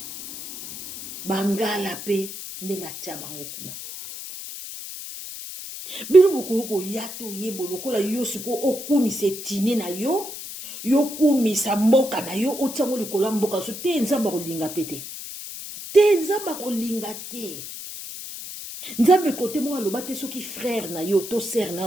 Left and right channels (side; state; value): left; noise; hiss, 10 dB below the sound